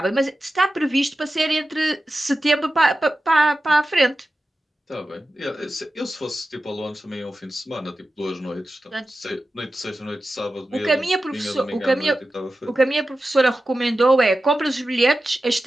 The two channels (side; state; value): both; normal; correlation 0.93